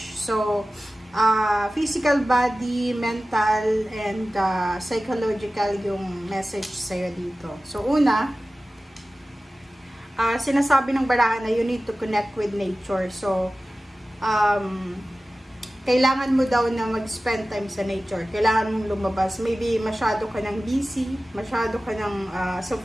So, physical body, mental, and psychological yung message sa'yo dito. So, una, sinasabi ng barahan na you need to connect with nature. So, kailangan mo daw na mag-spend time sa nature. Kailangan mong lumabas. Maybe masyado ka ng busy, masyado ka ng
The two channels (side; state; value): both; normal; correlation 0.96